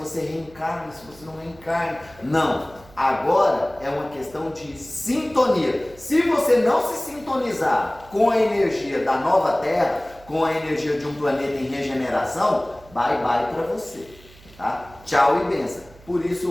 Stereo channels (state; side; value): noise; right; hum, 23 dB below the sound